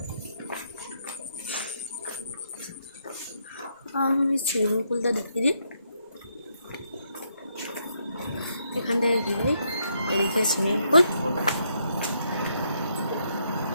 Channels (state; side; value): inverted; both; correlation -0.76